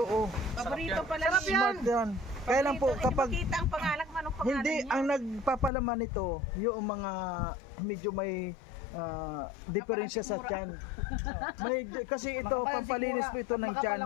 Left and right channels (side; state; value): right; drops out; at 5.7 s